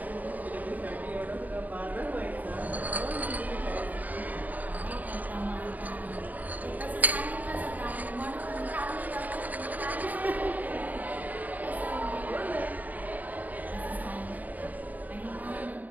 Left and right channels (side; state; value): left; late; 0.079 ms